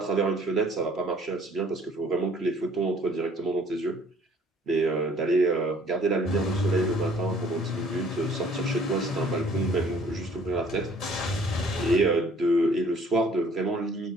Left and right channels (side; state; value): both; normal; correlation 0.57